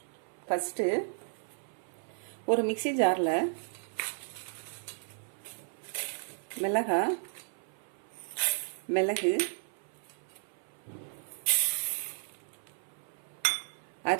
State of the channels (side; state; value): left; silent; 55 dB below the other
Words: ஃபர்ஸ்ட் ஒரு மிக்ஸி ஜாரில் மிளகு,